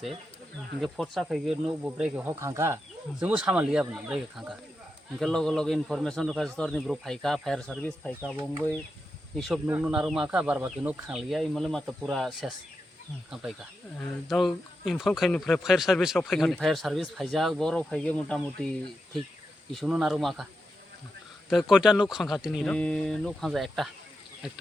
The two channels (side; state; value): both; normal; correlation 0.87